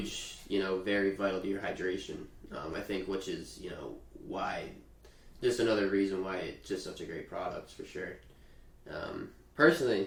you know, very vital to your hydration. I think, which is, you know, why, just another reason why it's just such a great product, for sure.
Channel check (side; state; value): both; identical; correlation 1.00